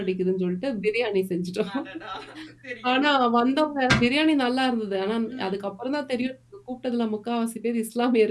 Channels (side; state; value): both; identical; correlation 1.00